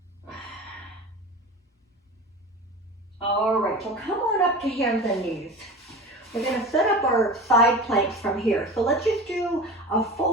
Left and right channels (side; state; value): both; normal; correlation 0.32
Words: All right, so come on up to hands and knees. We're going to set up our side planks from here. So let's just do a